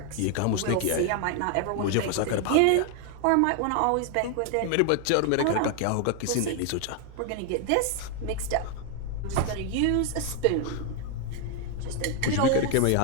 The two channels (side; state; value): both; different; correlation 0.00